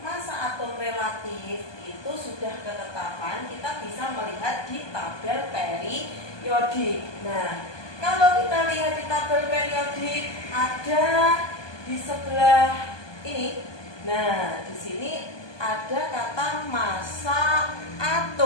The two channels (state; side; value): late; right; 1.2 ms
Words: masa atom relatif itu sudah ketetapan, kita bisa melihat di tabel periodik. Nah, kalau kita lihat di tabel periodik ada di sebelah ini. Nah, di sini ada kata massa